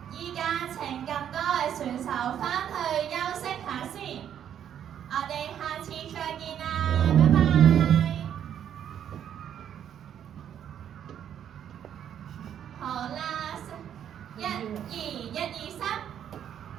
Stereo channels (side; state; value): left; quieter; 9.5 dB